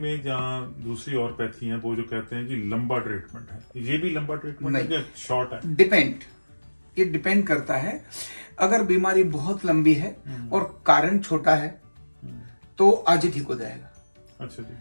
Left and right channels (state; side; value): inverted; both; correlation -1.00